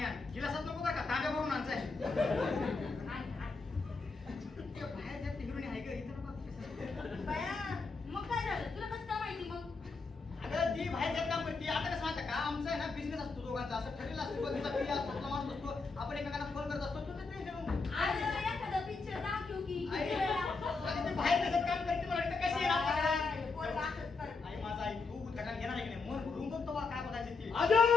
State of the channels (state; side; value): quieter; right; 4.2 dB